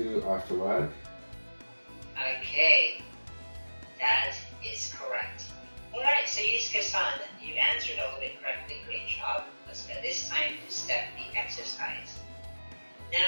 after work? Okay, that is correct. Alright, so Yusuke-san, you answered all of it correctly. Great job. Let's go this time to step the exercise.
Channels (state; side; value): inverted; both; correlation -1.00